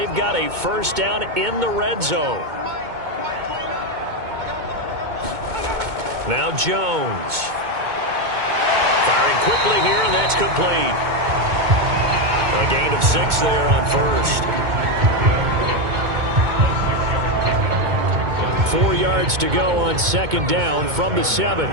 got a first down in the red zone. Now Jones. Firing quickly here, and that's complete. A gain of 6 there on first. 4 yards to go on 2nd down from the 7.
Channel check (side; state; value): left; late; 2.2 ms